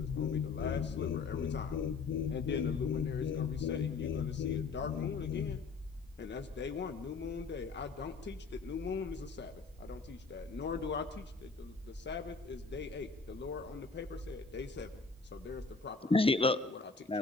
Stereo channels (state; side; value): quieter; right; 4.5 dB